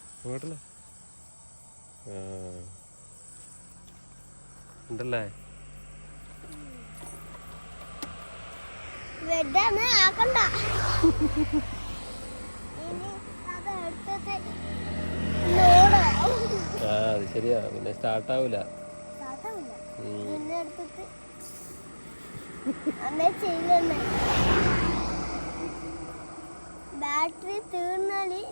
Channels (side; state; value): both; inverted; correlation -1.00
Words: അങ്ങോട്ടല്ലേ ഉണ്ടല്ലേ. അത് ശരിയാ, പിന്നെ സ്റ്റാർട്ടാവൂല. ബാറ്ററി തീർന്നാല്